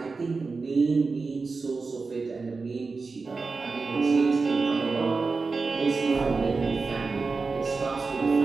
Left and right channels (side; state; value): left; quieter; 4.2 dB